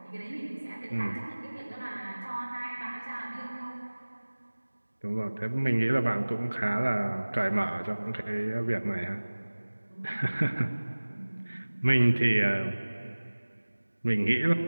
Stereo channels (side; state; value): both; inverted; correlation -1.00